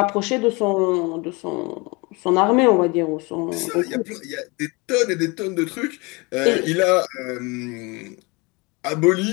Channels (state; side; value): quieter; right; 27.1 dB